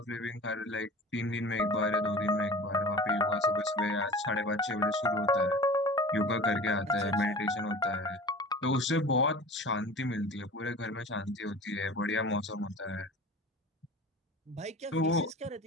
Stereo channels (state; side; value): normal; both; correlation 0.38